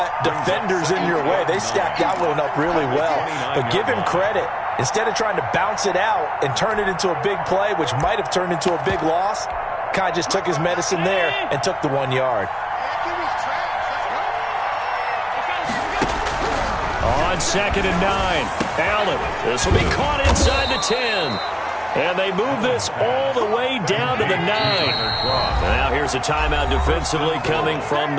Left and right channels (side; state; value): both; identical; correlation 1.00